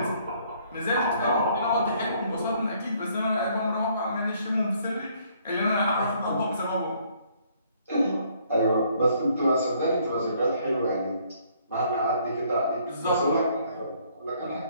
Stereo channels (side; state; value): both; inverted; correlation -0.65